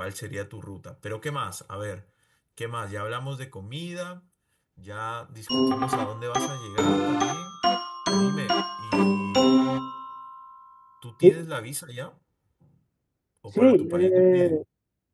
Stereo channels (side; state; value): both; identical; correlation 1.00